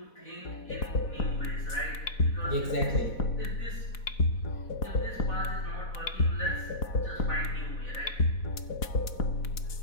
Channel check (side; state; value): right; late; 4.1 ms